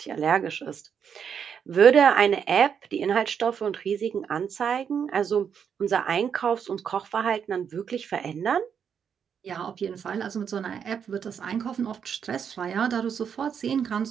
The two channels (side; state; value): left; quieter; 7.5 dB